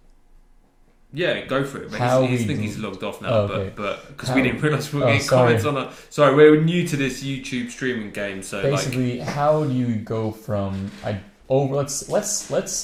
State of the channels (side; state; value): both; identical; correlation 1.00